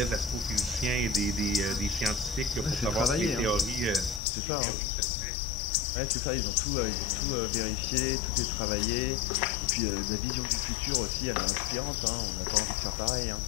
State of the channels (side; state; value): right; drops out; at 4.2 s